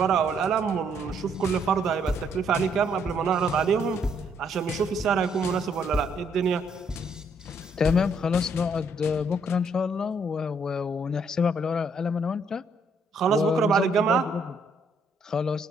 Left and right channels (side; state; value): both; normal; correlation 0.70